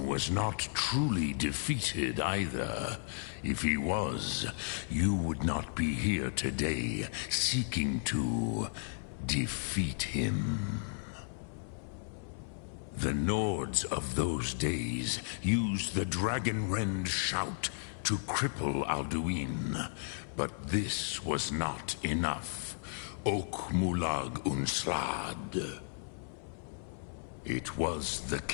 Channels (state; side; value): silent; right; 55 dB below the other